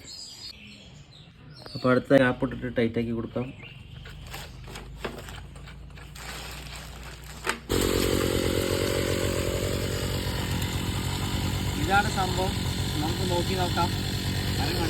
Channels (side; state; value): both; identical; correlation 1.00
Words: അപ്പോൾ അടുത്ത ഗ്യാപ്പ് ഇട്ടിട്ട് ടൈറ്റാക്കി കൊടുക്കാം. ഇതാണ് സംഭവം. നമുക്ക് നോക്കി നോക്കാം.